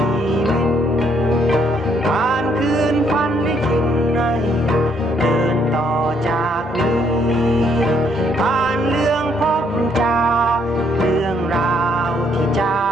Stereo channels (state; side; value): normal; both; correlation 0.70